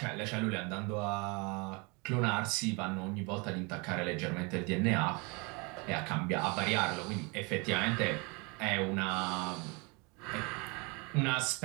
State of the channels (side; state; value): left; quieter; 29.7 dB